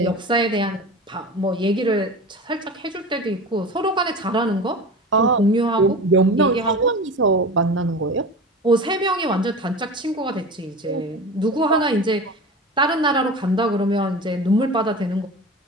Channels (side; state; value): both; normal; correlation 0.32